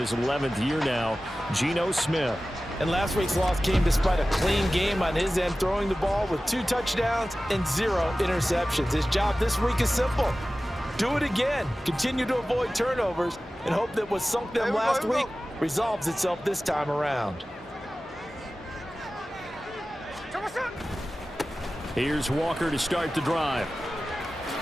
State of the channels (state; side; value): normal; both; correlation 0.96